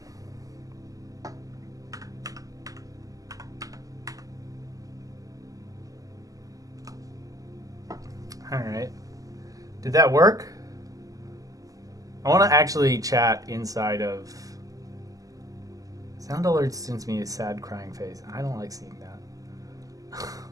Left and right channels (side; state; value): left; late; 0.17 ms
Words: All right. Did that work? I want to actually chat inside of. Sound alert sends me a sad crying face. I don't like seeing that.